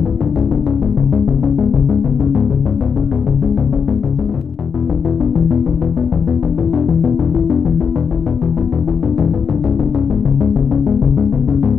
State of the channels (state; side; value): quieter; right; 6.3 dB